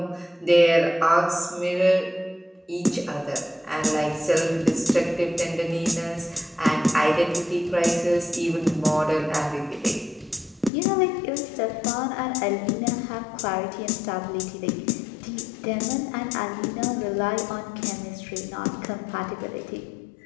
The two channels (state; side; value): drops out; right; at 10.7 s